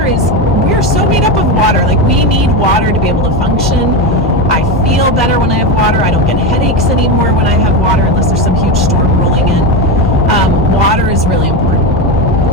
are so made up of water. Like we need water to be able to function. I feel better when I have water. I don't get headaches anymore when I have water, unless there's some huge storm rolling in. Water is really important.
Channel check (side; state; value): both; normal; correlation 0.15